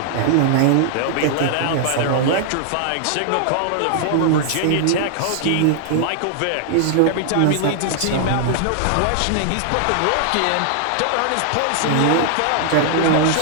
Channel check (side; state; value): both; different; correlation 0.00